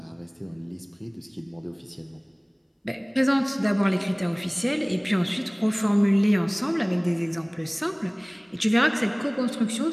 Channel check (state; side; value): identical; both; correlation 1.00